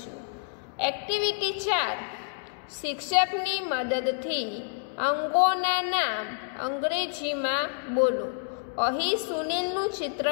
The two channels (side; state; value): right; silent; digital silence